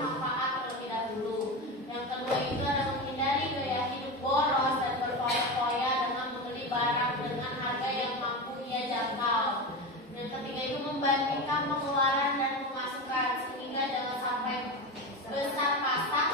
terlebih dahulu. Yang kedua itu adalah menghindari gaya hidup boros dan berfoya-foya dengan membeli barang dengan harga yang mampu ia jangkau. Yang ketiga itu membandingkan pengeluaran dan pemasukan sehingga jangan sampai besar pasak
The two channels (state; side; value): normal; both; correlation 0.21